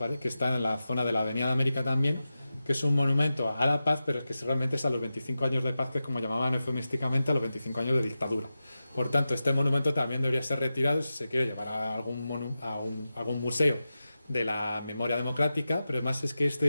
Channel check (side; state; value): both; inverted; correlation -0.93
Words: está en la zona de la Avenida de América también, que es un monumento a la paz, pero es que realmente es a los 25 años de paz, que es como llamaban eufemísticamente a los 25 años de dictadura. Por tanto, este monumento también debería ser retirado si se quiere llevar a algún museo de la memoria democrática, pero además es que